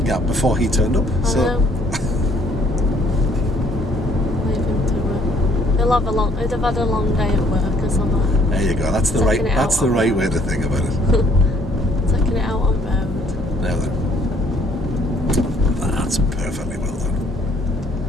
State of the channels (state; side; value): normal; both; correlation 0.63